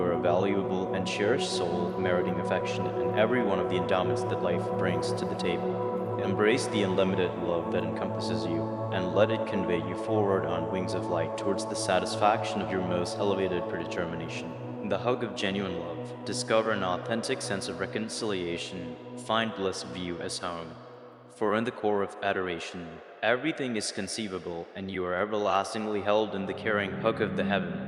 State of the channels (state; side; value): identical; both; correlation 1.00